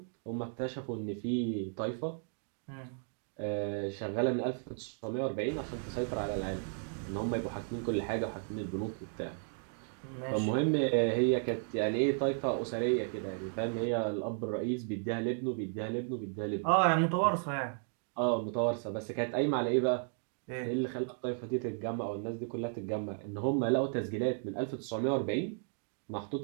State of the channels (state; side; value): silent; left; 55 dB below the other